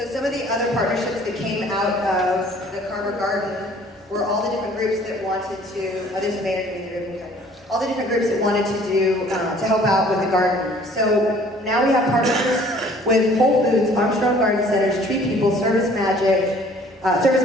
some of the other partnerships that came out of the Carver Garden were all the different groups that wanted to, there's a mayor in the room, all the different groups that wanted to do, to help out with the garden. So now we have partnerships with Whole Foods, Armstrong Garden Centers, Tree People, Service Masters,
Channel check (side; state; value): both; normal; correlation 0.54